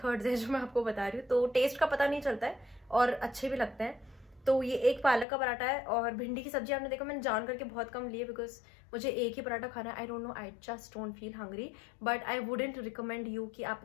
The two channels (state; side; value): drops out; right; at 5.2 s